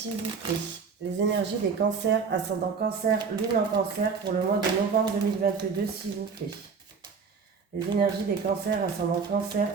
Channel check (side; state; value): left; quieter; 5.5 dB